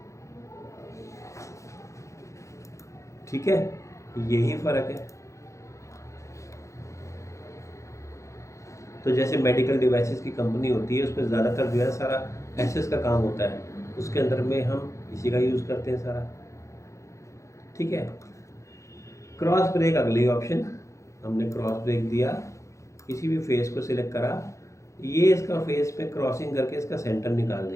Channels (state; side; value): late; right; 0.15 ms